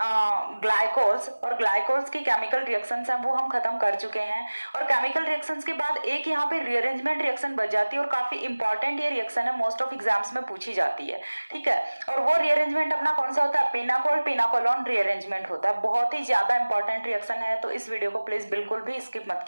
ग्लाइकोल्स। और ग्लाइकोल्स की केमिकल रिएक्शंस हैं वो हम खत्म कर चुके हैं। और केमिकल रिएक्शंस के बाद एक यहाँ पे रीअरेंजमेंट रिएक्शन बच जाती है और काफी इंपॉर्टेंट ये रिएक्शन है, मोस्ट ऑफ एग्जाम्स में पूछी जाती है। ठीक है, और वो रीअरेंजमेंट अपना कौन सा होता है? पिनाकोल पिनाकोलोन रीअरेंजमेंट होता है। बहुत ही ज्यादा इंपॉर्टेंट रिएक्शन है, तो इस वीडियो को प्लीज बिल्कुल भी स्किप मत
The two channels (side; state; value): both; inverted; correlation -1.00